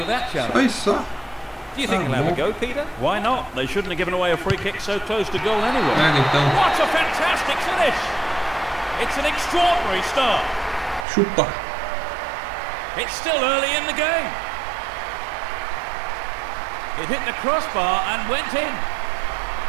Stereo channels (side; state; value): left; drops out; at 11.1 s